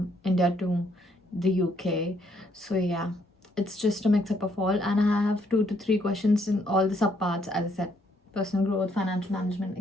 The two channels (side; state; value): both; normal; correlation 0.70